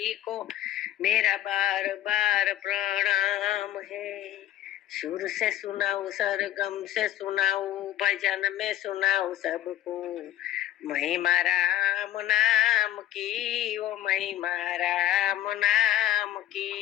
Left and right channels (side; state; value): right; quieter; 12.4 dB